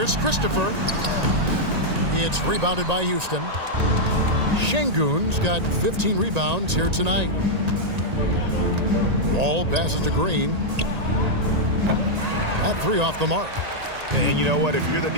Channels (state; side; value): late; left; 1.9 ms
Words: Christopher. It's rebounded by Houston. Şengün's got 15 rebounds here tonight. Ball passes to Green. That 3 off the mark. And you know what? If you're the